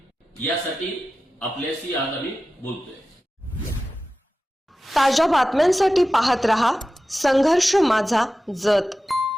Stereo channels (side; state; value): both; normal; correlation 0.94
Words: यासाठी आपल्याशी आज आम्ही बोलतोय. ताज्या बातम्यांसाठी पाहत रहा संघर्ष माझा जत.